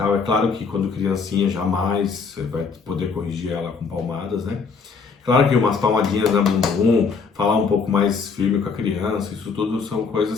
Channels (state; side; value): quieter; right; 5.2 dB